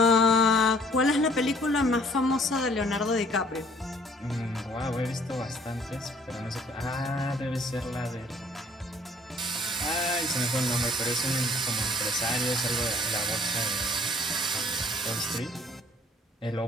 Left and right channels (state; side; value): normal; both; correlation 0.57